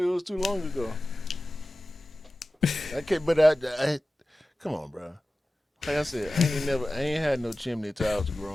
was too long ago. I come on, bro. Like I said, I ain't had no chimney till I was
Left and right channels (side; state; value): both; normal; correlation 0.96